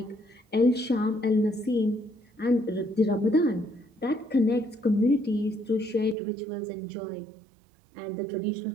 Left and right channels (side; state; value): left; drops out; at 6.2 s